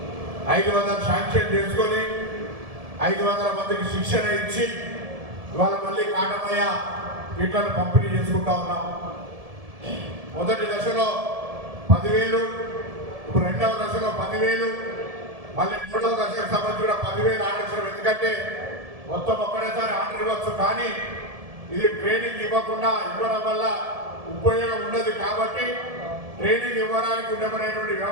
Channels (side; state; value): left; late; 1.7 ms